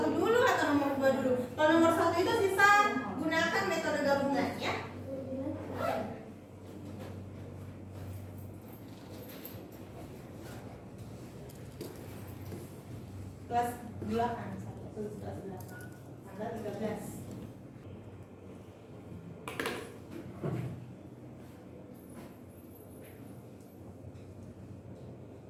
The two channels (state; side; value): identical; both; correlation 1.00